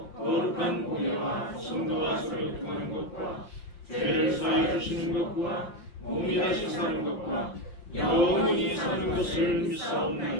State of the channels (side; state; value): right; late; 5.7 ms